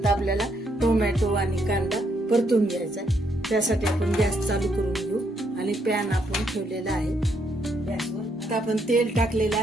आपल्याला टोमॅटो आणि कांदा परतून घ्यायचा. त्यासाठी आपण गॅस चालू करून घेऊ, आणि पॅन आपण ठेवलेला आहे गॅसवर. आता आपण तेल टाकलेलं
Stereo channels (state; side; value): normal; both; correlation 0.74